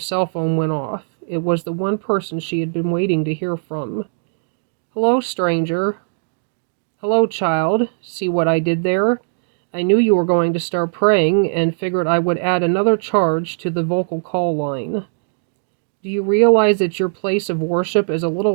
phone went off. It was the one person she had been waiting to hear from. "Hello, stranger." "Hello, child. See what I did there? I knew you were going to start praying and figured I would add another charge to the vocal call line. Do you realize that your place of worship is a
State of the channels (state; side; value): silent; left; digital silence